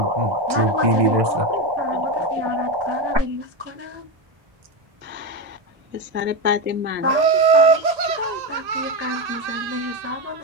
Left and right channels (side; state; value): left; late; 1.8 ms